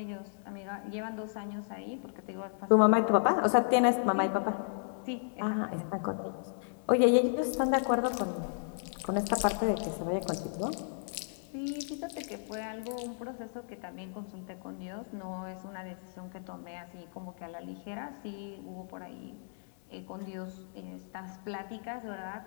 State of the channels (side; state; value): right; silent; digital silence